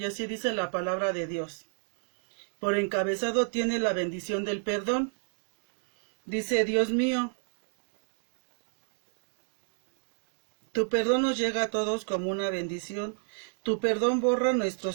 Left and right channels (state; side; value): silent; left; 57 dB below the other